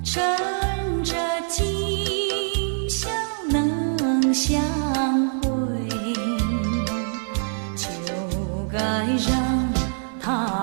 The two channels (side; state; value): left; silent; 59 dB below the other